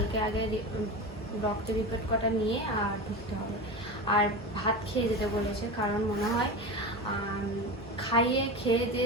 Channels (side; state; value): both; normal; correlation 0.25